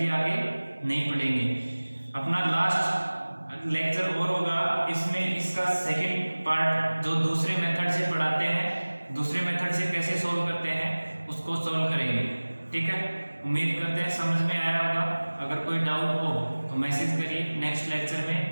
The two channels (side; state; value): both; inverted; correlation -1.00